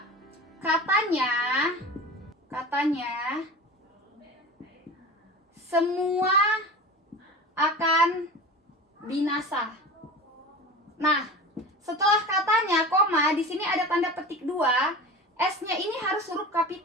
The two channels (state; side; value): normal; both; correlation 0.33